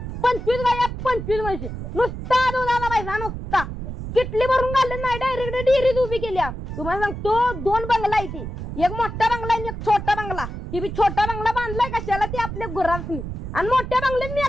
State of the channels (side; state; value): right; noise; rumble, 7 dB below the sound